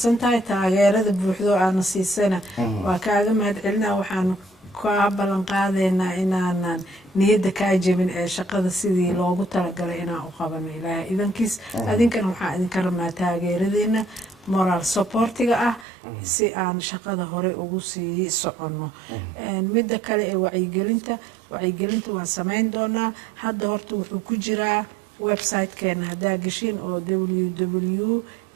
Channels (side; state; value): left; drops out; at 15.9 s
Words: tahay taageerada buuxdo aana siisana waa kaaga mahad celinaa waxaanu kaa ballan qaadaynaa inaanan niyadda kaa jebin ee shaqada sidii loogu talagalay inaan u qabano ilaahay idankiis adinkana waxaan idinka rabnaa taageeradeena moral supportiga ah si aan shaqada hore ugu sii soconno midda kale ee wacyigelinta waan samayn doonaa hadda horta wuxuu ku jiraa website-keena haddaa gashin oo